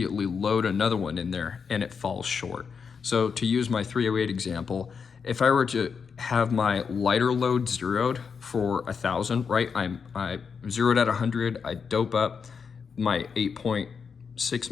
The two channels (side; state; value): right; quieter; 6.0 dB